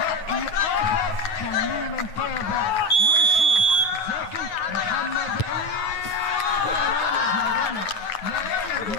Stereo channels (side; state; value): right; late; 9.2 ms